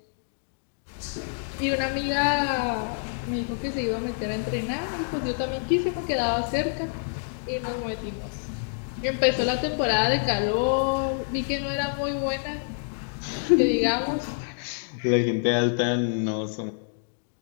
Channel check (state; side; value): silent; right; digital silence